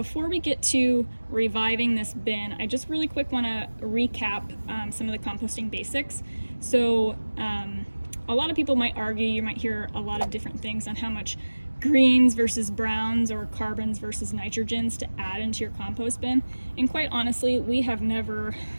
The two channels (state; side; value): inverted; both; correlation -1.00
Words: we get to reviving this bin, I just really quick want to recap some of the composting basics. So a lot of people might argue, you might hear a lot of different things on how much greens versus browns or carbons versus nitrogens to add into your compost bin. And quite honestly, we have never